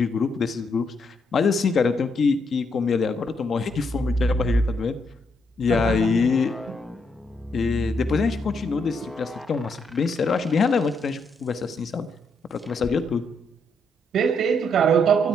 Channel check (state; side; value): normal; both; correlation 0.76